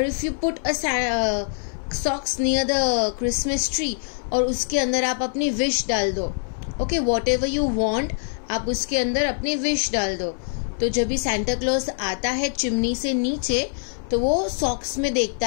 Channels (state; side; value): silent; right; 58 dB below the other